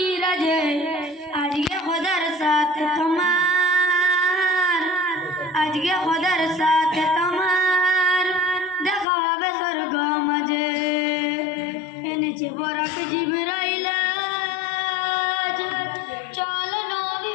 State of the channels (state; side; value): drops out; right; at 9.1 s